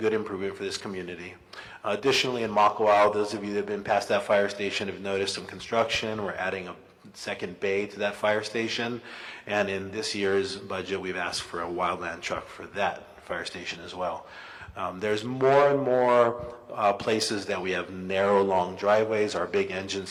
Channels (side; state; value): both; identical; correlation 1.00